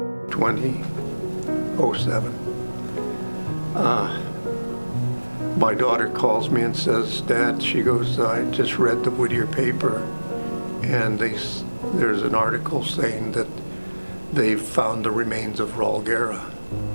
2007. My daughter calls me and says, "Dad," she goes, "I just read the Whittier paper, and there's an article saying that they've found the remains of Raul Guerra."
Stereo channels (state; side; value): inverted; both; correlation -1.00